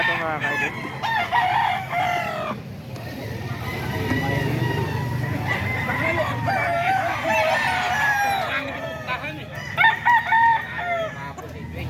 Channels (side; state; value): both; identical; correlation 1.00